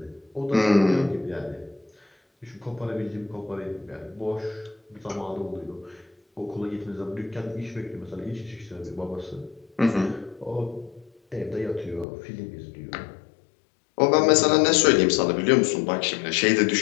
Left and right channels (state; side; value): drops out; right; at 12.1 s